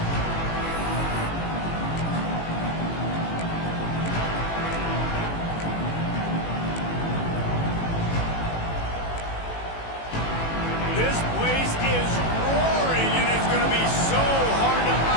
This place is roaring, and it's going to be so hard to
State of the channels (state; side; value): late; right; 18 ms